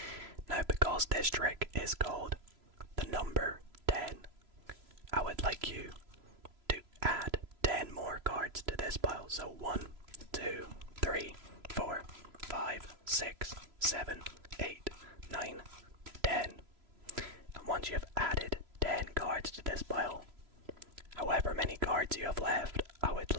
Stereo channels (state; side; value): late; left; 3.0 ms